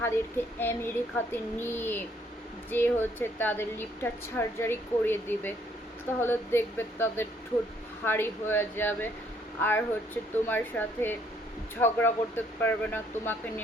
আমেরিকাতে নিয়ে যে তাদের লিপটা সার্জারি করিয়ে দিবে। তাহলে দেখবে তাদের ঠোঁট ভারী হয়ে যাবে, আর তোমার সাথে ঝগড়া করতে পারবে না, তোমাকে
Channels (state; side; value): normal; both; correlation 0.66